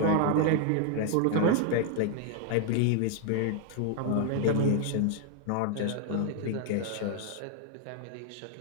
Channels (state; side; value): different; both; correlation 0.00